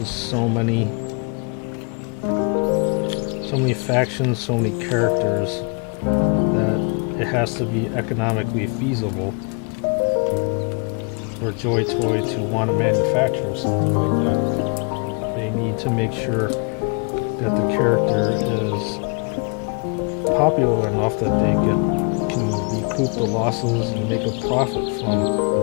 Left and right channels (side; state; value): right; quieter; 37.2 dB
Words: so many factions, so many characters, that it has to be economically feasible for Joy Toy to want to manufacture something like that. They need to make sure that the character is popular enough that they can recoup the losses and make a profit from